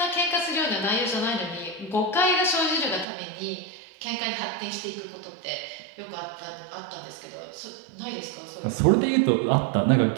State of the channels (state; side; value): drops out; left; at 3.1 s